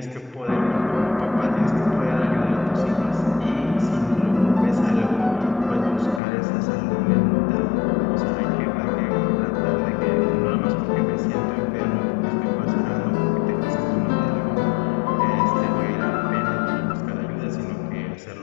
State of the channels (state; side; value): drops out; right; at 6.2 s